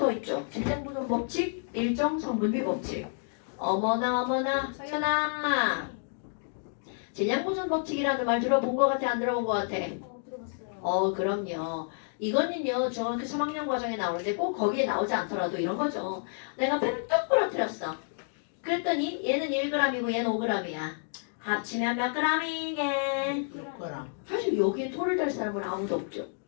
있죠. 질량 보존 법칙, 일정 성분비 법칙. 어머나 서연아. 질량 보존 법칙이라는 말 들어본 것 같아? 안 들어본 것 같아? 들어봤어요. 그럼요. 이거는요 중학교 3학년 과정에 나오는데 꼭 거기에 나오지 않더라도 이런 거죠. 내가 펜을 뚝 부러뜨렸어. 그랬더니 얘는 1g이고 얘는 5g이야. 합치면 몇 g이게? 사실 여기에 토를 댈 사람은 아무도 없죠.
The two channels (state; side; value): silent; right; digital silence